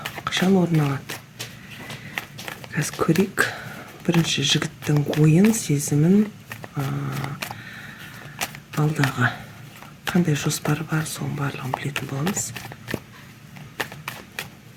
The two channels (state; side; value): identical; both; correlation 1.00